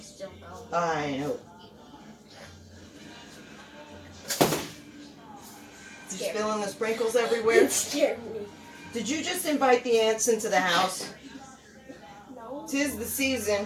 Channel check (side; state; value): both; identical; correlation 1.00